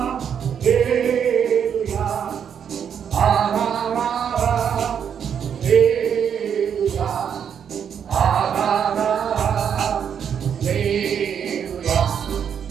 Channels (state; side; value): quieter; left; 8.0 dB